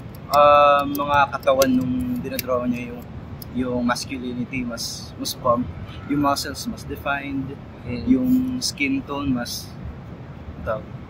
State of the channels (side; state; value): both; identical; correlation 1.00